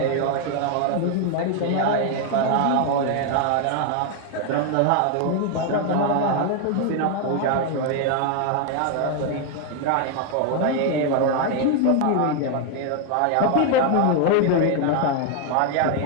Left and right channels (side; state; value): both; different; correlation 0.00